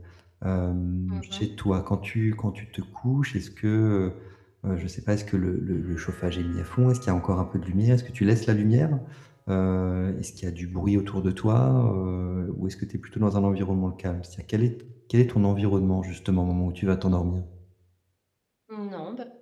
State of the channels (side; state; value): both; identical; correlation 1.00